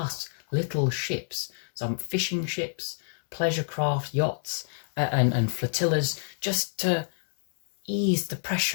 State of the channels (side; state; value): right; silent; 57 dB below the other